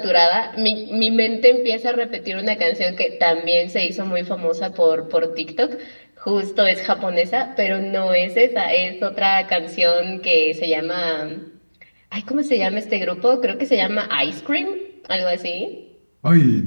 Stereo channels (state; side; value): inverted; both; correlation -1.00